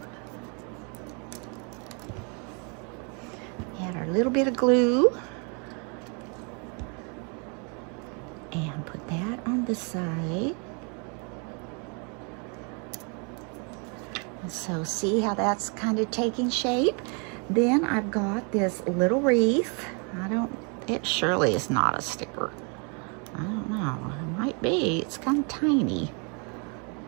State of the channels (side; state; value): left; quieter; 35.8 dB